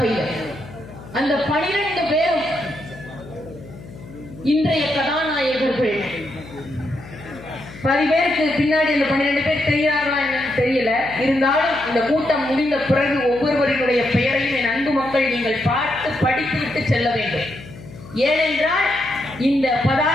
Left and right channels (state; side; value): noise; left; hum, 17 dB below the sound